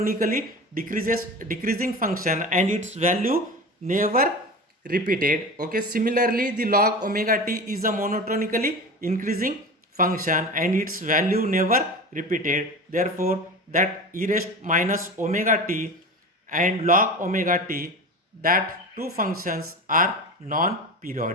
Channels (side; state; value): both; normal; correlation 0.30